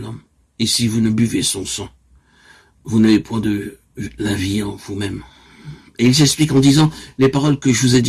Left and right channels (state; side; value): identical; both; correlation 1.00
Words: et si vous ne buvez son sang, vous n'avez point de la vie en vous-même. Et il s'explique en disant, les paroles que je vous ai